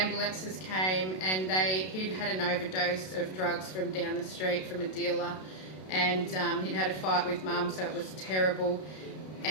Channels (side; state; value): right; late; 32 ms